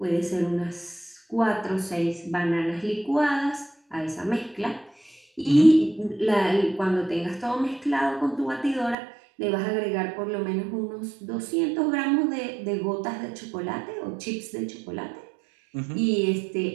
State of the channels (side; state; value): left; drops out; at 9.0 s